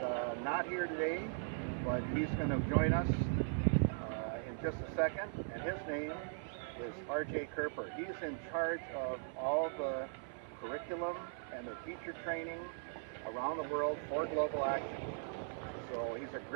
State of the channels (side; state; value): left; silent; 51 dB below the other